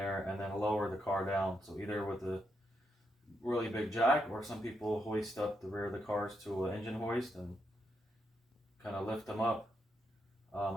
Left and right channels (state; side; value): normal; both; correlation 0.81